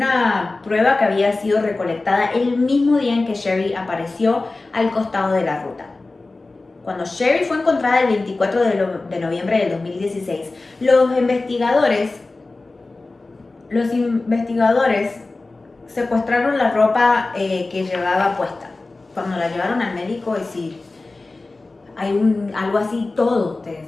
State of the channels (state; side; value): quieter; right; 3.3 dB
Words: prueba que había sido recolectada el mismo día en que Sherry apareció al costado de la ruta. Cuando Sherry fue encontrada el 24 de noviembre del 2016, los investigadores secuestraron la ropa que llevaba puesta. Cuando la llevaron al médico, es decir, hay algo así, todo, te